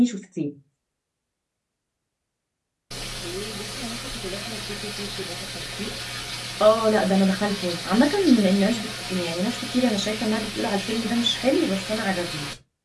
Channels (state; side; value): identical; both; correlation 1.00